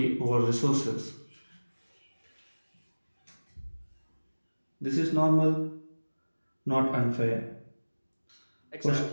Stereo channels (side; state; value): both; inverted; correlation -1.00